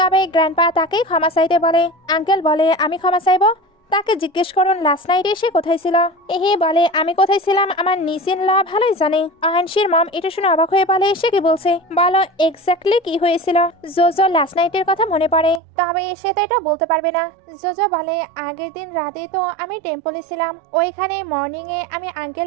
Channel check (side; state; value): left; drops out; at 15.6 s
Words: গ্র্যান্ডপা তাকেই ক্ষমা চাইতে বলে। আঙ্কেল বলে আমি ক্ষমা চাইবো? তাকে জিজ্ঞেস করুন লাস্ট নাইটে সে কোথায় ছিল। বলে আমি কোথায় ছিলাম আমার নিসিন ল ভালোই জানে। আয়ানশির মম এটা শুনে অবাক হয়ে বলে সে কি বলছে, বলো এক্স্যাক্টলি কি হয়েছিল। জোজো লাস্ট নাইটের কথা মনে পড়ে, তবে সে তো এটা বলতে পারবে না। জোজো বলে আগের দিন রাতে তো আমি টেম্পলে ছিলাম, ওইখানে মর্নিং এ আমি